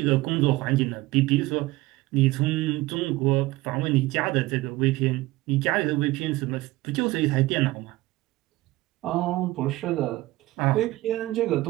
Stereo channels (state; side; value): quieter; left; 19.0 dB